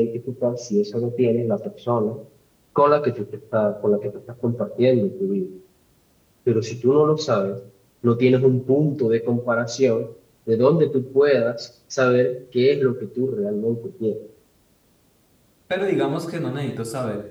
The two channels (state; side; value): identical; both; correlation 1.00